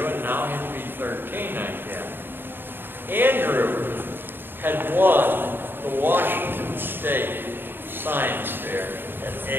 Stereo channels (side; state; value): left; late; 0.098 ms